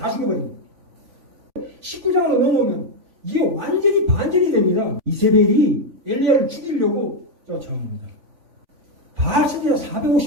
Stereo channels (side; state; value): left; late; 3.5 ms